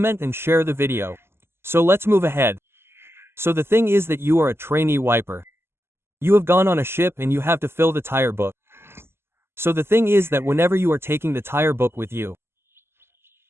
and share the video. So let's move ahead. So the thing is that you are a trainee wiper. You have gone on a ship and you have to fill the tire book. So the thing is that whenever you are taking the tire book with you,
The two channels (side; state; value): left; late; 0.12 ms